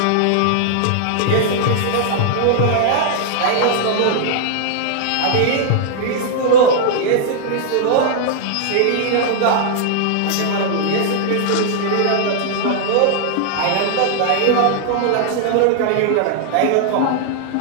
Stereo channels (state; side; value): different; both; correlation -0.01